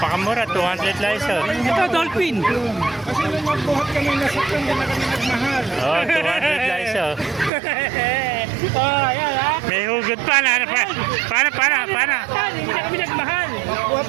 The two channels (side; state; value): left; drops out; at 7.5 s